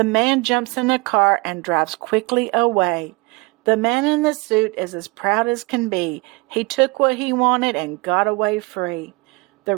man jumps in a car and drives quickly away. The man in the suit is as proud as can be. He took what he wanted and got away free. The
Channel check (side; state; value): left; quieter; 25.9 dB